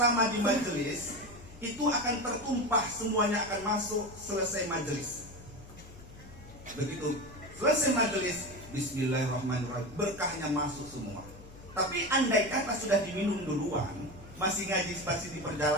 di majelis itu akan tertumpah, semuanya akan masuk selesai majelis. Begitu selesai majelis, bismillahirrahmanirrahim, berkahnya masuk semua. Tapi andai kata sudah diminum duluan, masih ngaji spasi di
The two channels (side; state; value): left; noise; hum, 18 dB below the sound